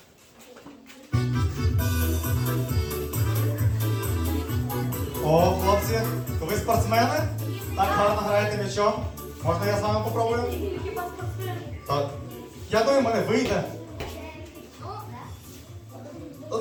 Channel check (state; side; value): identical; both; correlation 1.00